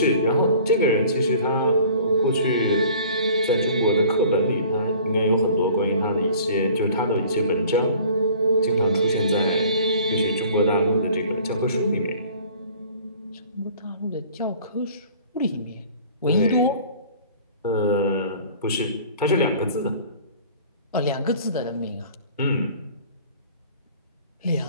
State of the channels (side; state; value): both; inverted; correlation -0.49